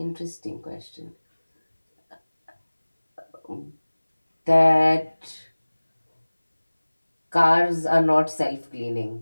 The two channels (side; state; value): both; inverted; correlation -1.00